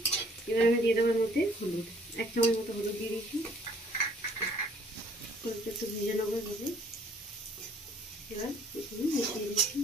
এবার আমি দিয়ে দেবো এর মধ্যে হলুদ, 1 চামচ মতো হলুদ দিয়ে দিয়েছি। হলুদটা একটু ভেজে নেবো এভাবে। এবার মিশিয়ে দিচ্ছি।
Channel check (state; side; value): normal; both; correlation 0.59